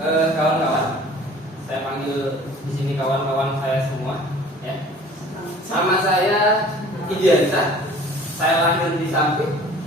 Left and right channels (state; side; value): normal; both; correlation 0.48